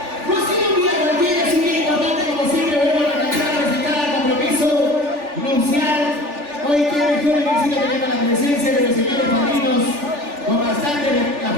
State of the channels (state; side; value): late; left; 3.4 ms